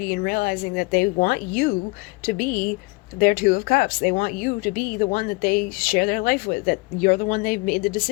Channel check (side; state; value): right; quieter; 26.9 dB